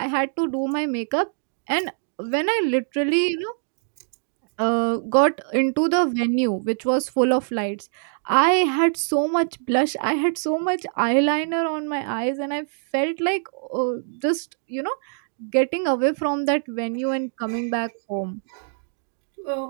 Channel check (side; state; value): left; silent; digital silence